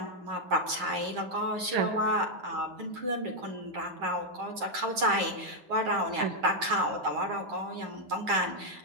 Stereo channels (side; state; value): left; late; 8.3 ms